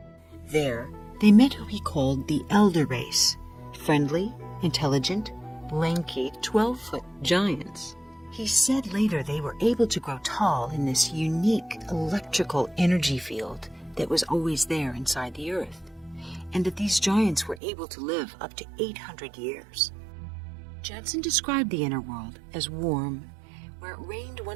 There, they met who he called the Elder Race, friendly, intelligent, lanky, 12-foot giants. He said later they were able to grow tall in this unique electrical energy field that was always there inside the earth, and that these giants were able to live up to 800 years. Jensen described the inner world as warm, where it rained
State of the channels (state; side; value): drops out; left; at 17.6 s